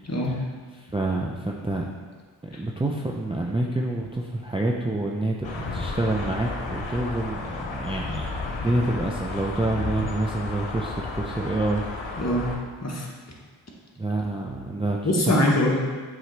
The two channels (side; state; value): both; normal; correlation 0.66